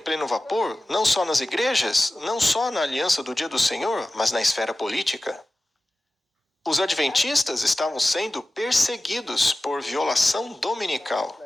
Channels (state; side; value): normal; both; correlation 0.96